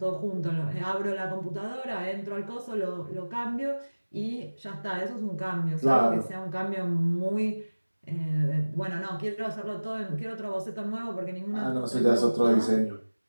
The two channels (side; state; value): both; inverted; correlation -1.00